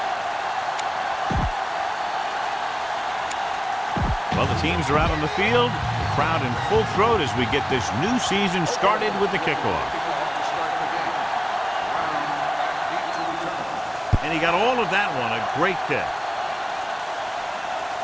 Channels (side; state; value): both; identical; correlation 1.00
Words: Well, the teams are out on the field. The crowd in full throat as we get this new season started with the kickoff. And he got all of that one. A great kick.